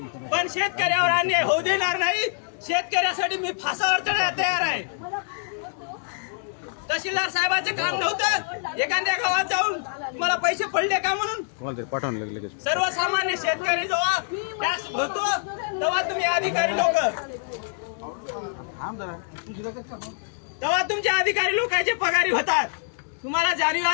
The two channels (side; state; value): right; silent; digital silence